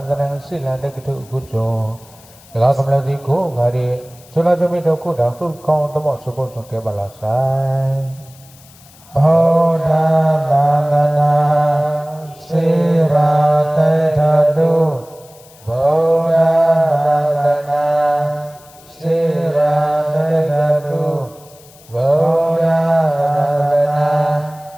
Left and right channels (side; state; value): left; noise; hiss, 25 dB below the sound